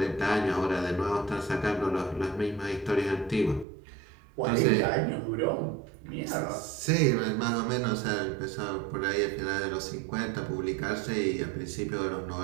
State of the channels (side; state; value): left; drops out; at 3.7 s